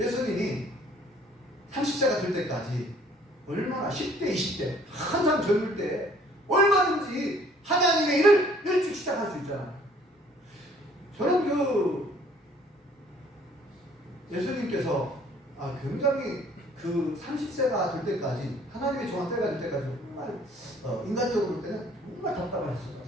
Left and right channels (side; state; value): both; normal; correlation 0.58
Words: 30세가 될 때까지 얼마나 10대, 20대 한참 젊을 때 얼마든지 하나님의 일을 일찍 시작할 수 있잖아요. 저는 예수님께서 굉장히 30세가 될 때까지, 하나님의 정한 때가 될 때까지 정말 인간적으로 볼 때는 정말 답답하셨을 것